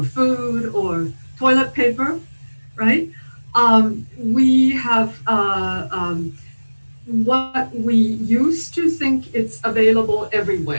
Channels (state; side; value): inverted; both; correlation -1.00